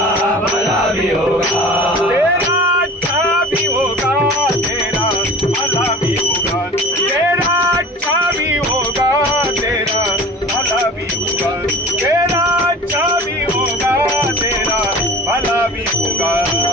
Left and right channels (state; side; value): normal; both; correlation 0.40